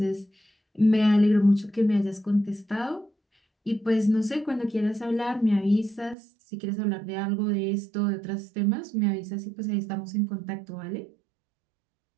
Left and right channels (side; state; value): left; drops out; at 6.2 s